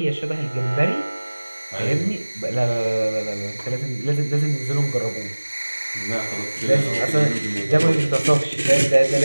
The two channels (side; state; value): both; inverted; correlation -1.00